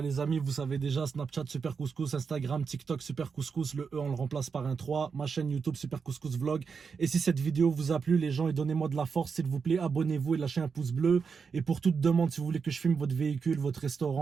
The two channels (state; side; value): quieter; left; 5.7 dB